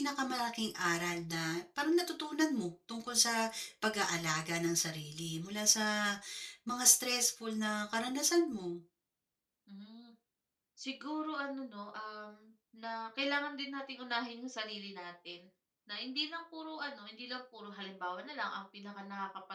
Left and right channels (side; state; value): both; identical; correlation 1.00